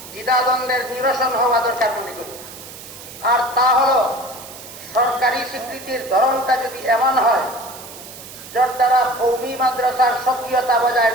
দ্বিধাদ্বন্দ্বের নিরসন হওয়া দরকার মনে করি, আর তা হল সরকারি স্বীকৃতির ধরনটা যদি এমন হয় যার দ্বারা কওমি মাদ্রাসার সক্রিয়তা বজায়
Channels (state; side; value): noise; right; hiss, 15 dB below the sound